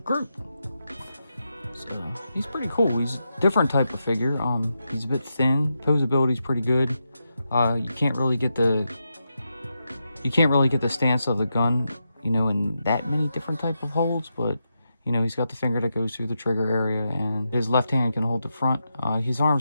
Group. So he's pretty cool. He's a different type of figure. He's a bit thin. Posability's pretty good. You can't really get the stance of the gun, you know, in that many different type of holds, but you know, he's got the finger that goes through the trigger area, and his left hand can hold the front. His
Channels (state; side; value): inverted; both; correlation -0.86